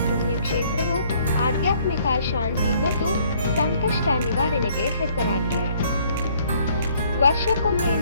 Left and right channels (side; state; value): both; inverted; correlation -0.62